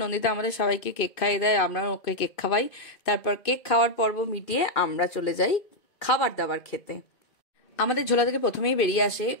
নন্দিতা আমাদের সবাইকে কেক খাইয়ে দেয়, আমরা ওকে কেক খাওয়াই। তারপর কেক খাওয়ার পর্ব মিটিয়ে আমরা চলে যাই খাবার দাবার খেতে। আমাদের ঝোলা থেকে প্রথমেই বেরিয়ে আসে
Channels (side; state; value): right; late; 2.5 ms